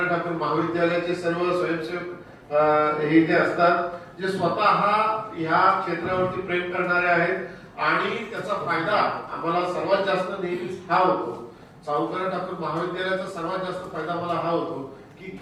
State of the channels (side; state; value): both; identical; correlation 1.00